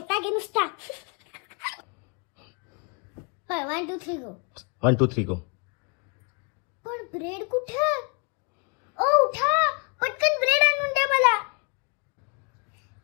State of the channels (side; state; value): right; quieter; 32.9 dB